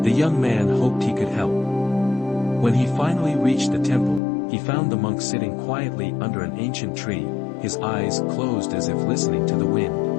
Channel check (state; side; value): drops out; right; at 4.2 s